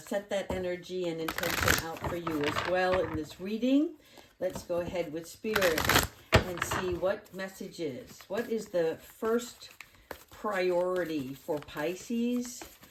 that energy and intention out for you as well in this reading. Let's go ahead with Spirit and see what messages. What is the first priority for Pisces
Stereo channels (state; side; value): identical; both; correlation 1.00